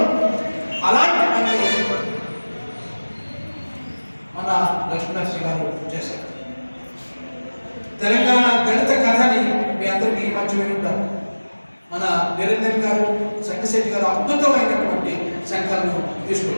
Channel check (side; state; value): both; inverted; correlation -1.00